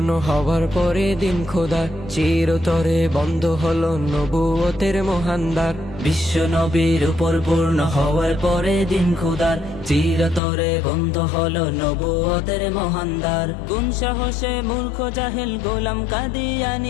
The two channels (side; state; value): right; drops out; at 10.4 s